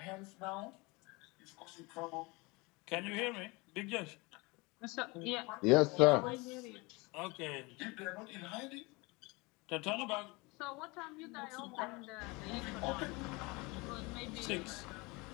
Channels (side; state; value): right; quieter; 25.8 dB